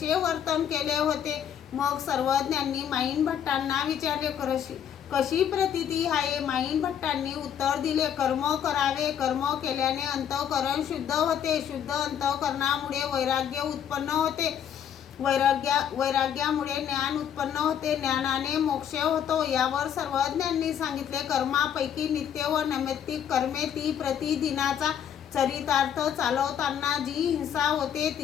वर्तन केले होते? मग सर्वज्ञांनी माईन भट्टांना विचारले, कशी प्रतीती आहे? माईन भट्टांनी उत्तर दिले, कर्म करावे, कर्म केल्याने अंतःकरण शुद्ध होते, शुद्ध अंतःकरणामुळे वैराग्य उत्पन्न होते, वैराग्यामुळे ज्ञान उत्पन्न होते, ज्ञानाने मोक्ष होतो। यावर सर्वज्ञांनी सांगितले, कर्मापैकी नित्य व नैमित्तिक कर्मे, ती प्रतिदिनाचा चरितार्थ चालवताना जी हिंसा होते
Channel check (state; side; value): quieter; right; 9.0 dB